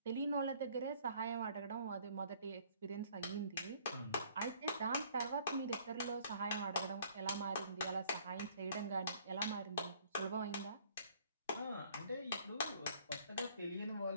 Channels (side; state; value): both; inverted; correlation -0.58